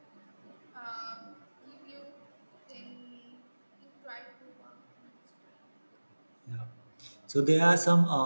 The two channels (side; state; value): both; inverted; correlation -1.00